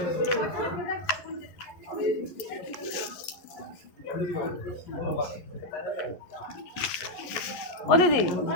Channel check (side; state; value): right; late; 11 ms